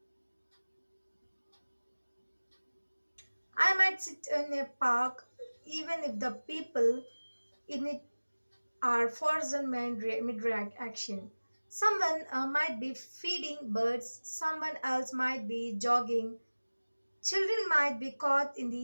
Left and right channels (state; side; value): inverted; both; correlation -1.00